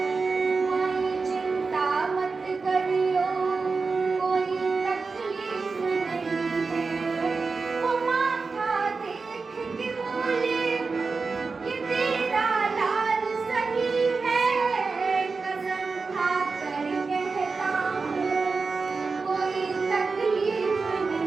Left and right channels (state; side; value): quieter; left; 4.4 dB